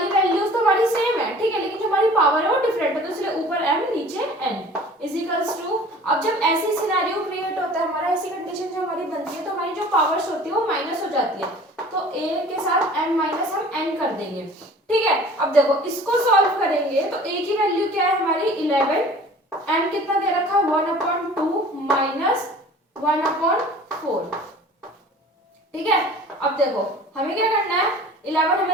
वैल्यूज तो हमारी सेम है, ठीक है, लेकिन जो हमारी पावर है वो डिफरेंट है, तो इसलिए ऊपर m नीचे n इज इक्वल्स टू। अब जब ऐसी सिनेरियो क्रिएट होता है हमारा, ऐसी कंडीशन जो हमारी बनती है, तो हमारी जो पावर्स होती है वो माइनस हो जाती है, तो a के साथ m माइनस हम n कर देंगे। ठीक है, अब देखो इसको सॉल्व करेंगे तो a की वैल्यू क्या है हमारी? 11, m कितना दे रखा है? 1/2 माइनस 1/4। ठीक है, अब देखो हमें क्या करना है? 11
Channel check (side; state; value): both; normal; correlation 0.46